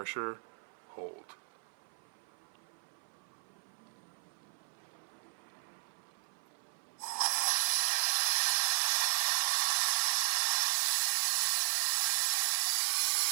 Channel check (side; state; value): left; silent; 55 dB below the other